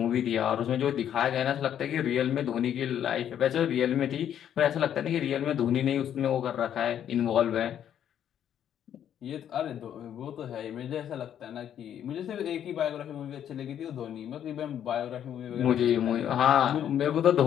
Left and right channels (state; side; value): quieter; right; 9.8 dB